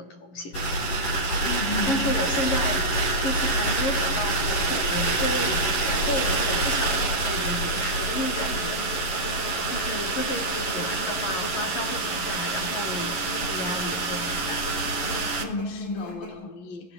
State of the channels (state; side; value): late; right; 11 ms